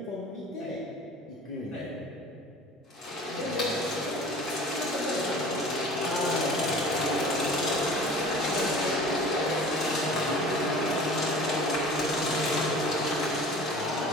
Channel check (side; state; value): both; normal; correlation 0.43